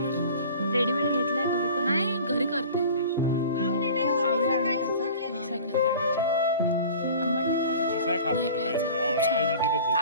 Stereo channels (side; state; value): both; inverted; correlation -0.42